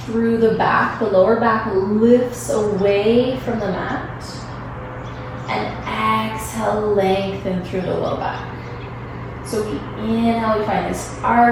through the back. The lower back lifts away from the mat. And exhale, lengthen through the low back. So we inhale, we find this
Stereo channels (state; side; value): identical; both; correlation 1.00